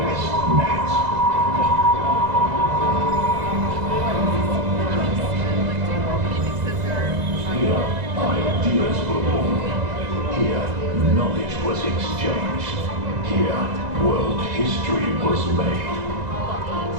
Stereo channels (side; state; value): left; late; 2.0 ms